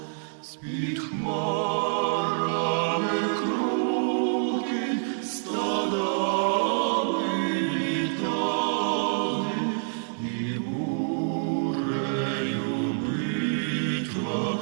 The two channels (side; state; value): left; silent; digital silence